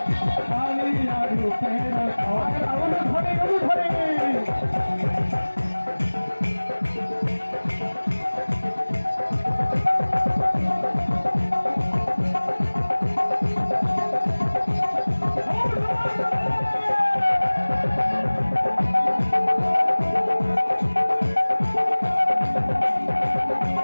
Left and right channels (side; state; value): both; inverted; correlation -1.00